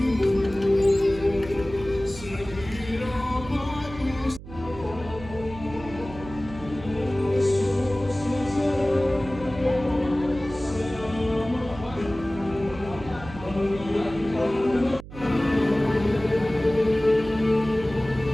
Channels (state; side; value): noise; right; hum, 14 dB below the sound